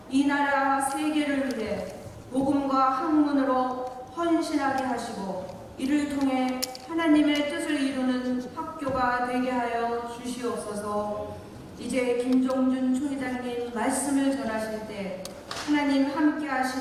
이 나라 세계를 위해 복음과 학문으로 헌신하게 하시고 이를 통해 하나님의 뜻을 이루는 학교가 되게 하여 주시옵소서. 이제 김종준 총회장님 말씀을 전하실 때 하나님 함께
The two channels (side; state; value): both; identical; correlation 1.00